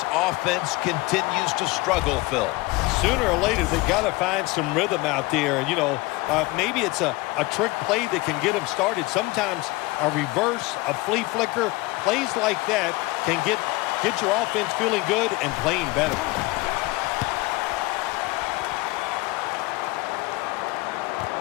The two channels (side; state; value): right; quieter; 21.9 dB